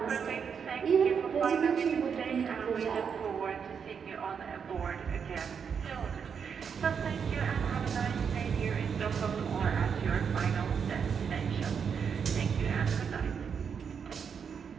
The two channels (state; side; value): quieter; left; 6.8 dB